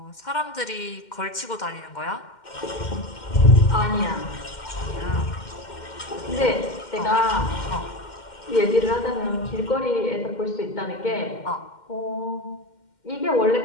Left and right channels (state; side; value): late; right; 2.1 ms